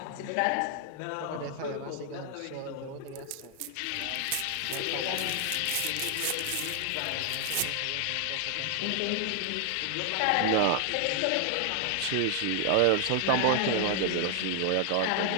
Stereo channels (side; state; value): both; different; correlation 0.00